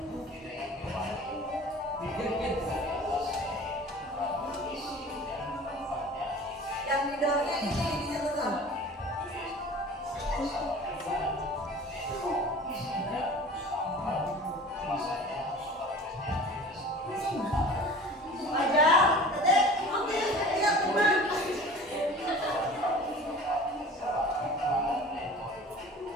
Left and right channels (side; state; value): both; normal; correlation 0.41